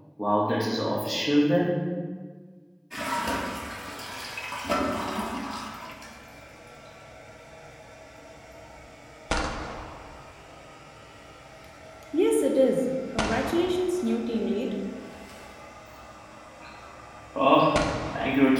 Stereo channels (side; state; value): both; identical; correlation 1.00